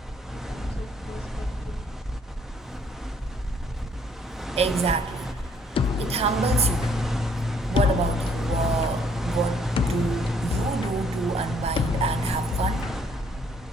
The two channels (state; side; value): normal; both; correlation 0.64